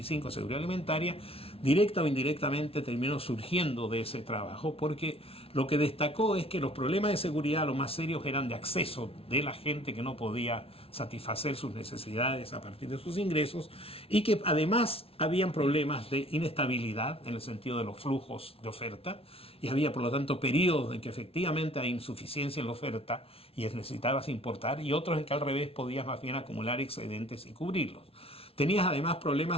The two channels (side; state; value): right; late; 0.27 ms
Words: seguridad alimentaria, directa o indirectamente terminó surgiendo de ese trabajo, porque lo que destacó es que los problemas de seguridad, los más serios, eran de acceso de la gente que no podía satisfacer sus necesidades a partir de sus ingresos, y que además habían problemas de inestabilidad en el sentido de los flujos de oferta, y había por lo tanto periodos en que efectivamente hay insuficiencia en la oferta y necesitabas importar, y otros en que al revés podías más bien acumular excedentes y cubrirlos. Tenías además